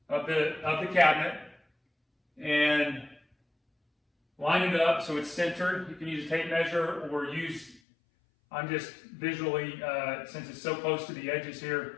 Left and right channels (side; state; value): right; drops out; at 7.8 s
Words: of the cabinet and line it up so it's centered. You can use a tape measure or I'm just visually, since it's so close to the edges